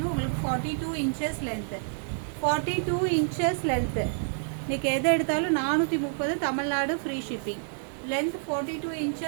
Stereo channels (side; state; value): left; silent; 59 dB below the other